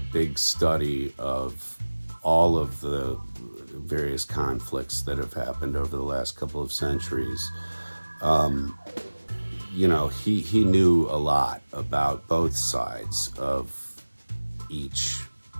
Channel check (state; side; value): inverted; both; correlation -1.00